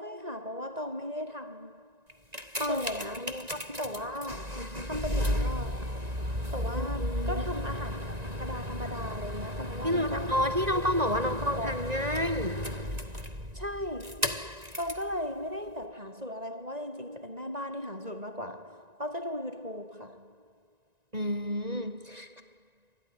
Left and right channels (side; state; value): left; late; 1.9 ms